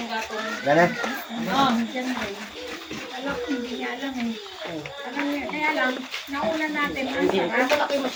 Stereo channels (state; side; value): identical; both; correlation 1.00